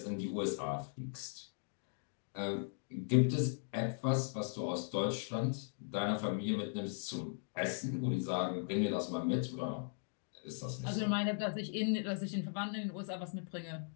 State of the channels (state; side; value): silent; right; digital silence